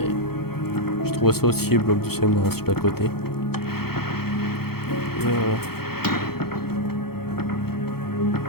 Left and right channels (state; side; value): late; right; 0.95 ms